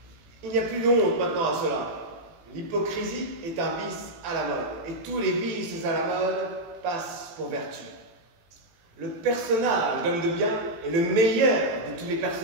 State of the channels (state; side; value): late; left; 18 ms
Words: Il n'y a plus d'honte maintenant à cela. L'hypocrisie est un vice à la mode, et tous les vices à la mode passent pour vertu. Le personnage d'homme de bien est le meilleur de tous les